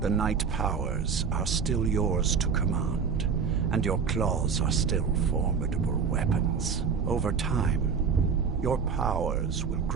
the night powers are still yours to command, and your claws are still formidable weapons. Over time, your powers will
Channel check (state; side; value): quieter; left; 6.0 dB